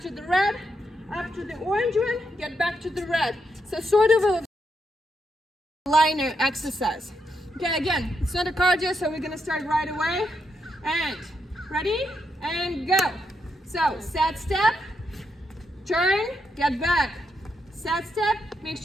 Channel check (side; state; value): both; normal; correlation 0.81